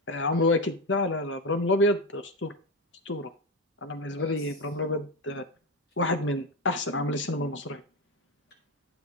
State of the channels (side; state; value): both; normal; correlation 0.14